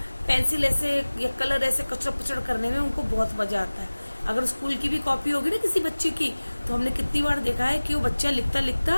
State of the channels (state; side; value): inverted; both; correlation -1.00